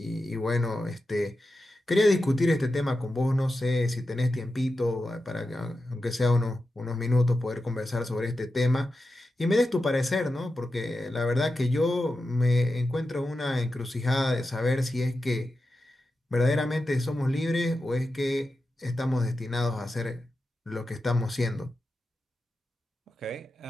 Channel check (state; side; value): normal; both; correlation 0.91